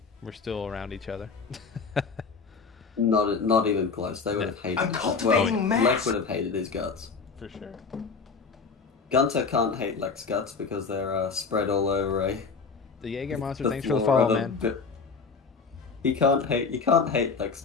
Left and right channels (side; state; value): right; quieter; 5.0 dB